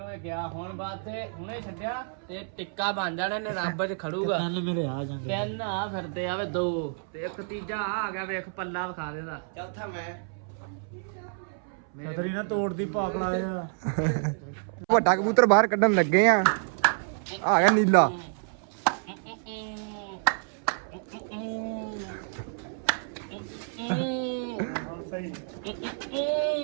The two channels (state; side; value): silent; left; 59 dB below the other